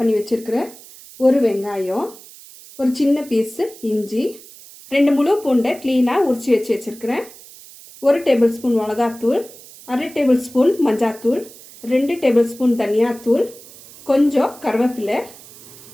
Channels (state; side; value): noise; right; hiss, 20 dB below the sound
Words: வச்சுருக்கிறேன், ஒரு வெங்காயம், ஒரு சின்ன பீஸு இஞ்சி, 2 முழு பூண்டை க்ளீனாக உரித்து வச்சுருக்கிறேன், 1 டேபிள் ஸ்பூன் மிளகாத்தூள், 1/2 டேபிள் ஸ்பூன் மஞ்சாத்தூள், 2 டேபிள் ஸ்பூன் தனியாத்தூள், கொஞ்சம் கருவேப்பிலை,